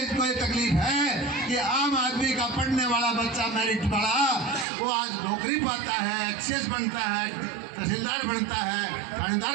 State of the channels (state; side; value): drops out; left; at 4.7 s